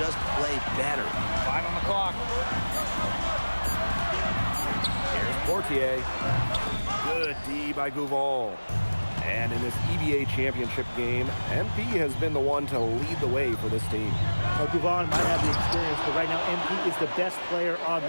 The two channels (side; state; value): both; inverted; correlation -1.00